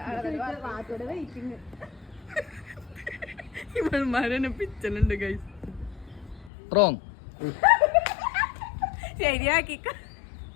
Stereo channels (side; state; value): right; drops out; at 6.5 s